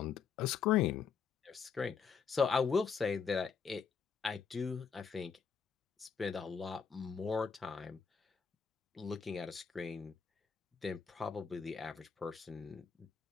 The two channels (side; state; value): right; quieter; 6.1 dB